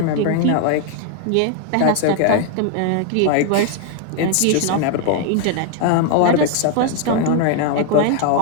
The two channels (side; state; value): both; different; correlation 0.00